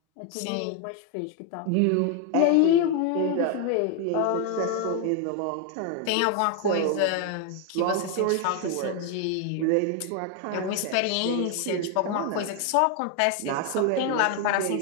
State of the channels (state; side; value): different; both; correlation 0.01